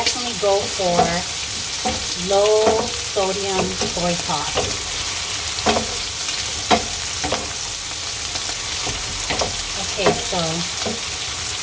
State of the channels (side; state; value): both; identical; correlation 1.00